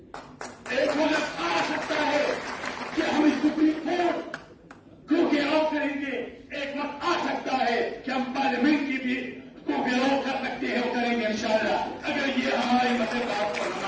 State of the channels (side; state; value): both; identical; correlation 1.00